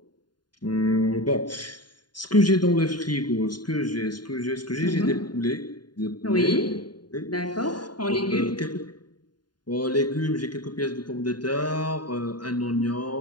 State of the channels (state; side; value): late; right; 0.70 ms